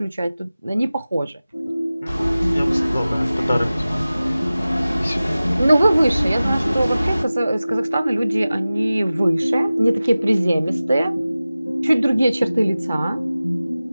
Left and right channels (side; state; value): both; inverted; correlation -0.96